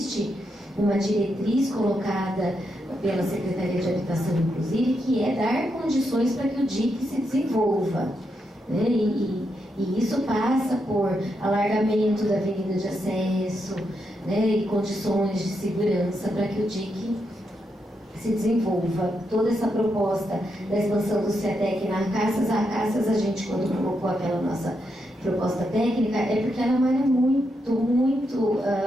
uma diretriz colocada pela Secretaria de Habitação, inclusive, que é dar condições para que o DIC se desenvolva, né? E isso passa por alargamento da avenida de acesso, né? E condições de segurança para que o DIC se desenvolva. Toda essa proposta da expansão do CETEC na Acácias, a gente, quando colocou aquela nossa proposta técnica, é porque ela é uma área muito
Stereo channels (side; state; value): both; normal; correlation 0.82